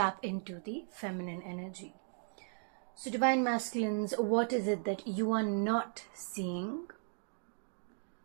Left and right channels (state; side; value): silent; left; 53 dB below the other